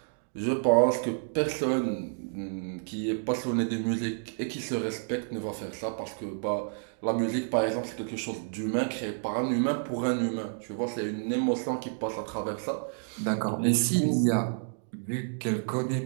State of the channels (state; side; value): silent; left; digital silence